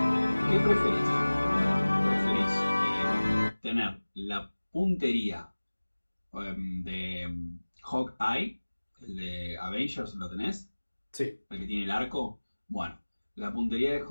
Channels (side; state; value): both; inverted; correlation -1.00